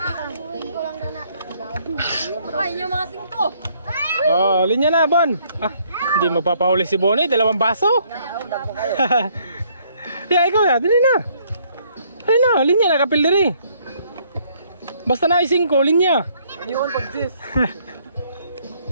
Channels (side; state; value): both; inverted; correlation -0.66